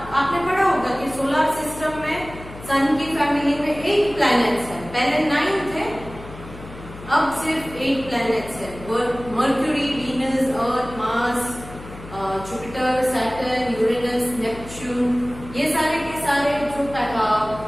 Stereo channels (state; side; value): noise; left; hum, 15 dB below the sound